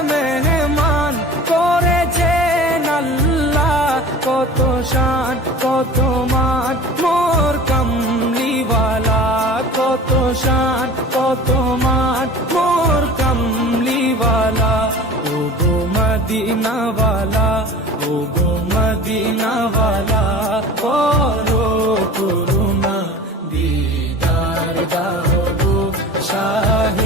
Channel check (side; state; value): both; normal; correlation 0.39